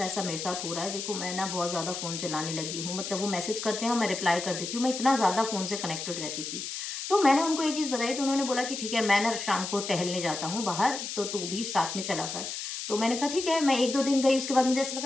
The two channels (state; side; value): noise; left; hiss, 6 dB below the sound